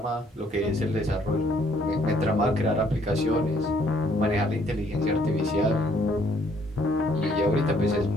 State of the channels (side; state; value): both; normal; correlation 0.65